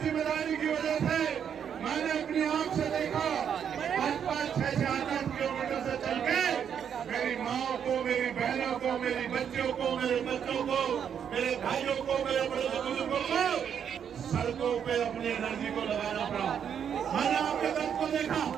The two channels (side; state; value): left; quieter; 8.2 dB